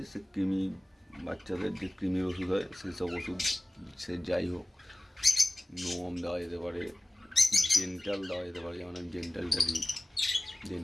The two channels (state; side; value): normal; both; correlation 0.97